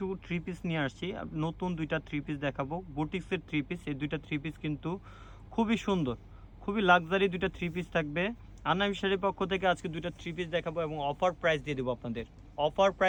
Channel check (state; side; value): identical; both; correlation 1.00